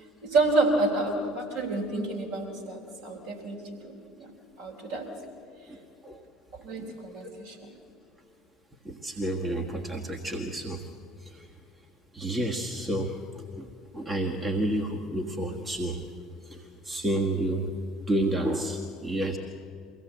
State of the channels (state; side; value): normal; both; correlation 0.55